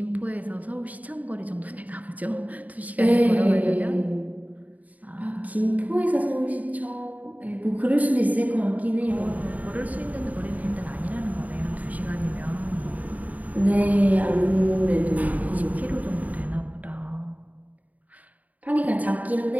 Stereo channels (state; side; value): late; left; 0.074 ms